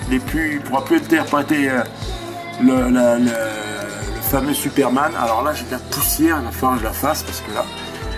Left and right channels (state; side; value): identical; both; correlation 1.00